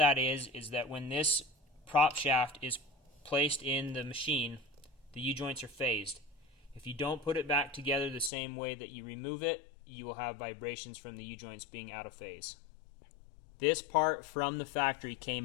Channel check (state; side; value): drops out; right; at 8.3 s